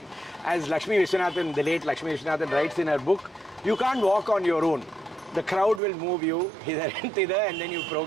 as Lakshmi Vishwanathan, the late Lakshmi Vishwanathan writes in her book, you can't walk on your own. The crowd will move you hither and thither, and then you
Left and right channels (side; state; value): left; drops out; at 5.8 s